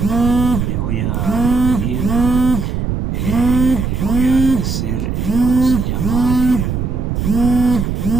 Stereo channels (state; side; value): noise; right; rumble, 2 dB below the sound